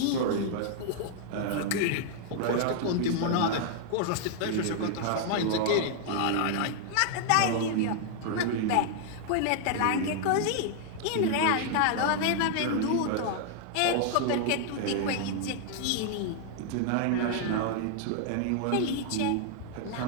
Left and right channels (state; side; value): different; both; correlation 0.00